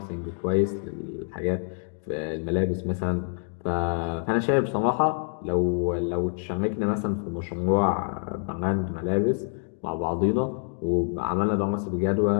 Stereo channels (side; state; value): right; silent; 60 dB below the other